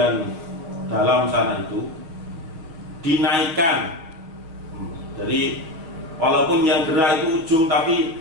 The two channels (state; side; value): late; left; 6.3 ms